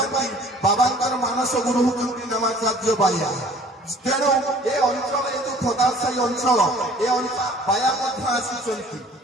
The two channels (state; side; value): normal; both; correlation 0.52